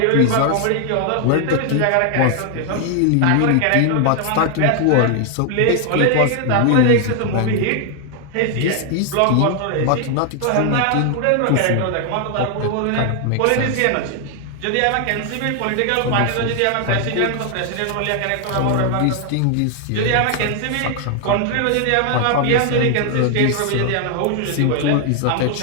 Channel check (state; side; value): different; both; correlation 0.00